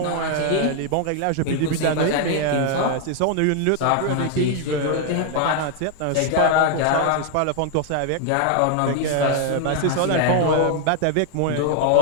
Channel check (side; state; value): both; different; correlation 0.00